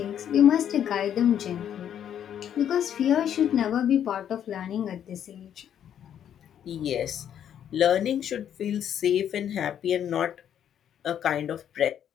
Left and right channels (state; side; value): quieter; right; 9.6 dB